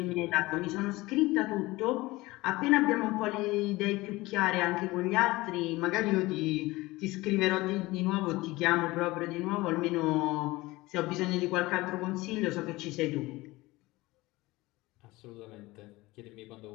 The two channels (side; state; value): right; quieter; 20.3 dB